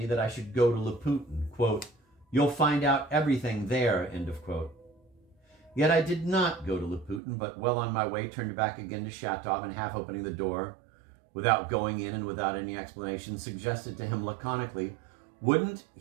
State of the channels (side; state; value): left; drops out; at 7.2 s